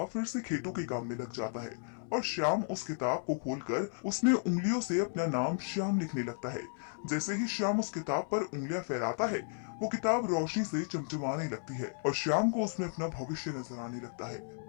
फिर से खेतों के काम में लग जाता है और श्याम उस किताब को खोलकर उसमें उंगलियों से अपना नाम श्याम लिखने लगता है। जैसे ही श्याम उस किताब पर उंगलियां फहराता है, वो किताब रोशनी से चमचमाने लगती है और श्याम को उसमें अपना भविष्य नजर आने लगता है।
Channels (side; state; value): right; silent; 55 dB below the other